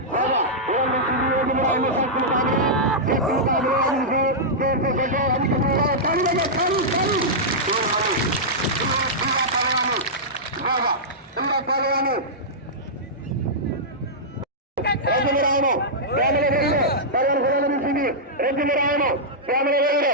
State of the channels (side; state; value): both; normal; correlation -0.11